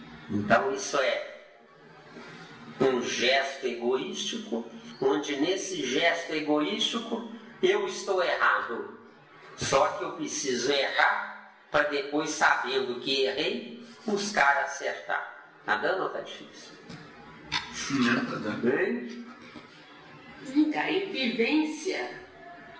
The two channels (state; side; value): identical; both; correlation 1.00